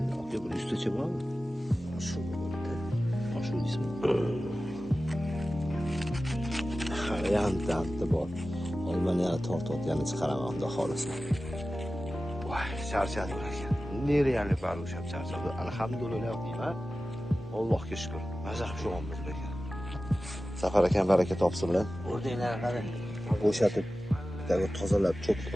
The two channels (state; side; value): normal; both; correlation 0.95